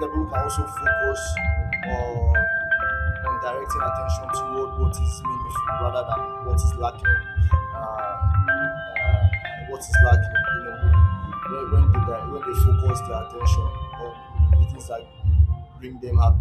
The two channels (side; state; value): both; identical; correlation 1.00